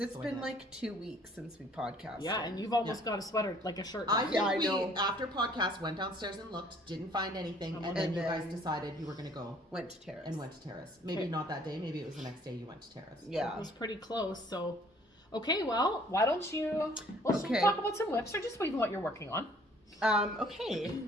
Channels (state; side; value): normal; both; correlation 0.57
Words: So I been did. like 2 weeks since we podcasted. Yeah, and you've almost got a sweater, like a shirt. I done. think I we, know. after podcast, went downstairs and looked, didn't find anything, and And then you then- guys decided you were going to go Went to Terrace. and went to Terrace. Maybe Okay. not that day, maybe it was the next day you went to Terrace. It Yeah. was pretty close. So, okay, well, why don't you? Well, should we Okay. talk about some whips or just even what you're working on? Okay,